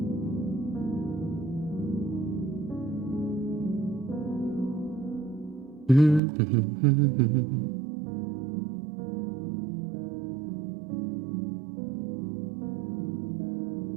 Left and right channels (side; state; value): left; drops out; at 6.2 s